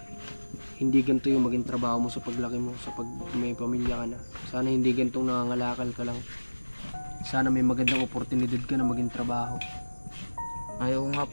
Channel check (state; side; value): inverted; both; correlation -1.00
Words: hindi ganito yung maging trabaho mo sa paglaki mo, sa pag may pamilya ka na. Sana hindi ganitong nangangalakal ka lang. Sana may magandang oportunidad ka na maging trabaho. Ayaw nga